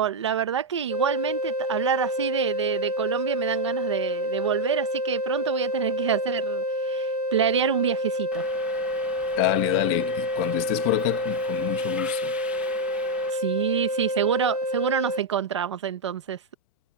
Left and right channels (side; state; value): both; normal; correlation 0.00